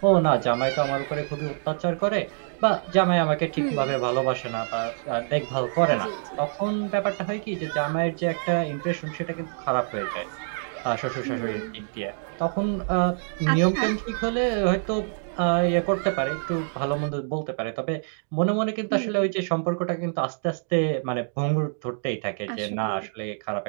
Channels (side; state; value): left; silent; 61 dB below the other